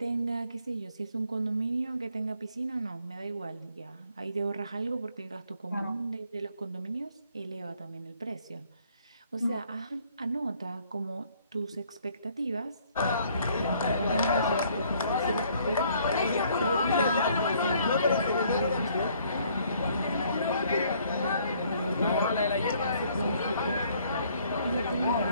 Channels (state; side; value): inverted; both; correlation -0.63